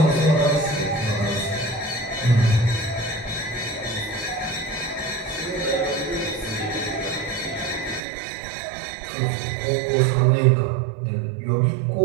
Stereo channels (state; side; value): drops out; left; at 8.0 s